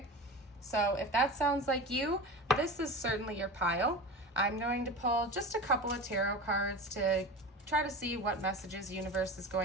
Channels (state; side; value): normal; both; correlation 0.30